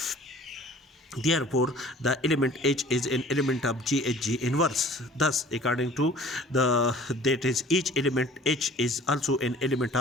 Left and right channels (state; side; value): normal; both; correlation 0.49